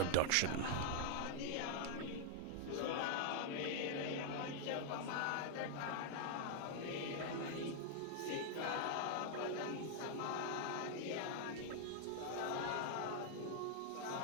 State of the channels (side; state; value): both; different; correlation -0.01